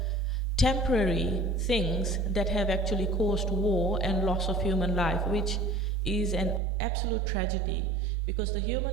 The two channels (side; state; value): left; drops out; at 6.6 s